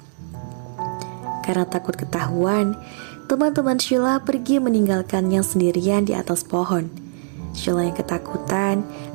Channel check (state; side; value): silent; left; 63 dB below the other